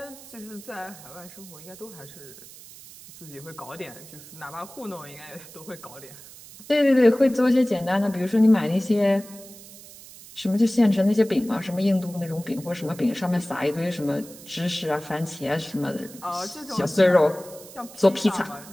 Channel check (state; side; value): noise; right; hiss, 18 dB below the sound